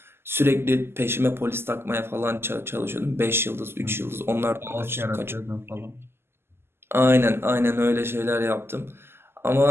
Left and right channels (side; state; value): left; late; 0.12 ms